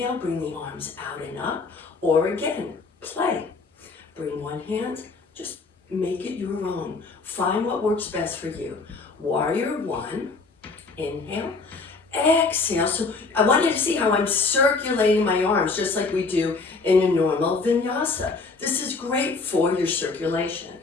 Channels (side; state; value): right; quieter; 4.1 dB